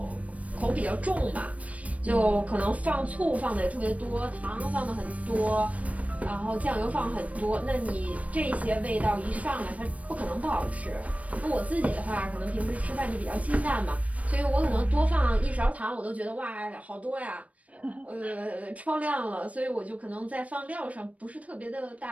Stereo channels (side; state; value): left; late; 0.066 ms